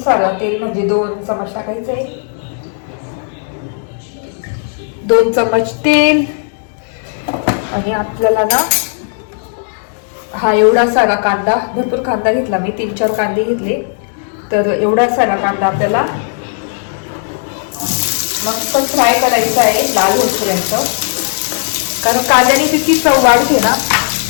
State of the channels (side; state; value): right; silent; digital silence